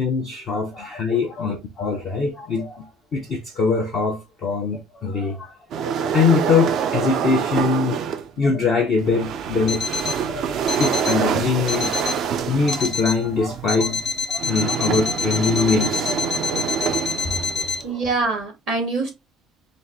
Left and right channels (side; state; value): both; normal; correlation 0.51